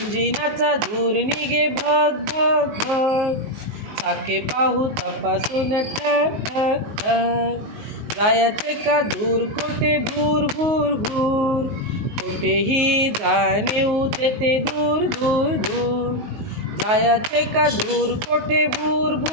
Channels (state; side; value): late; left; 19 ms